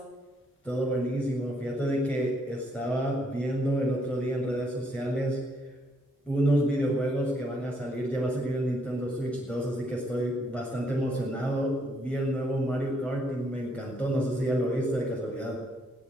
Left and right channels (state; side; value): normal; both; correlation 0.72